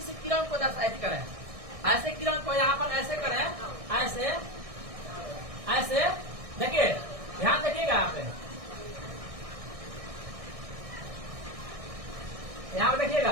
किरण को दर्शायित करें, ऐसे किरण को यहाँ पर ऐसे करें, ऐसे ऐसे देखिए, ध्यान देखिएगा आप यहाँ पर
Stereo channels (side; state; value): left; late; 1.6 ms